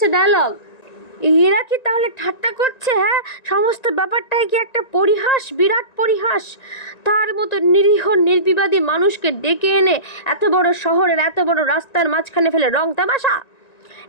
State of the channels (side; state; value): right; late; 1.9 ms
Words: ডায়লগ। এরা কি তাহলে ঠাট্টা করছে? হ্যাঁ, সমস্ত ব্যাপারটাই কি একটা পরিহাস, বিরাট পরিহাস? তার মতো নিরীহ নির্বিবাদী মানুষকে ডেকে এনে এত বড় শহরের এত বড় রাস্তার মাঝখানে ফেলে রং তামাশা?